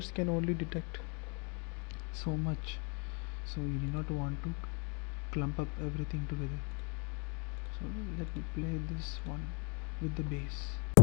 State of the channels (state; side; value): quieter; right; 35.4 dB